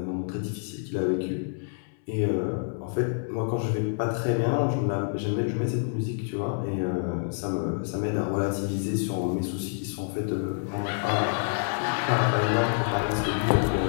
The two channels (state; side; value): silent; right; 60 dB below the other